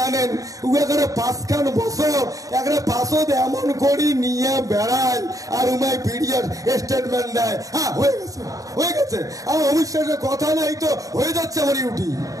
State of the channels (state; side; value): late; left; 0.17 ms